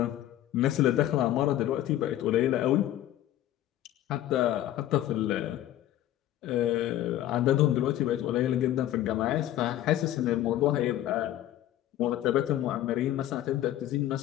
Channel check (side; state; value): right; quieter; 13.2 dB